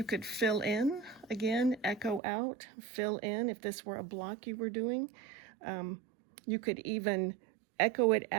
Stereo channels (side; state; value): left; drops out; at 2.2 s